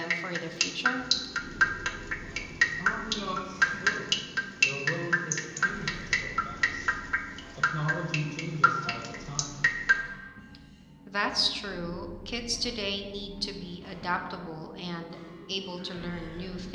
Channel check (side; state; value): both; identical; correlation 1.00